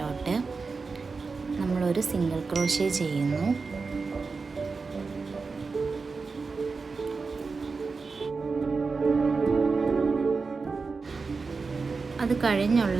നമ്മളൊരു സിംഗിൾ ക്രോഷ്യ ചെയ്യുന്നു. അത്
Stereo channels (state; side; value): quieter; left; 4.5 dB